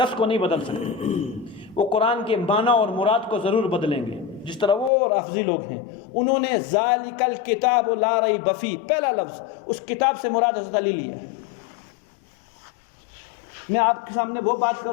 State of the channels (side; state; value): right; drops out; at 4.9 s